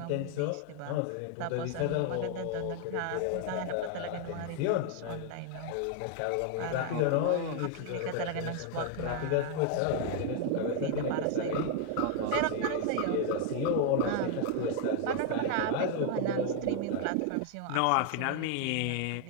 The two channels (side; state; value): both; different; correlation 0.00